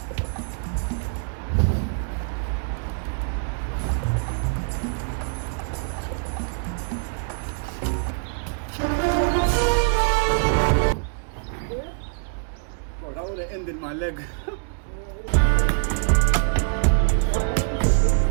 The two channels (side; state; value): left; silent; digital silence